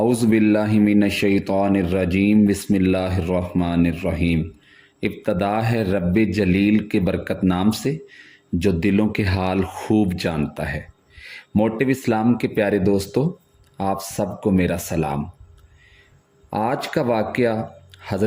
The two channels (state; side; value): identical; both; correlation 1.00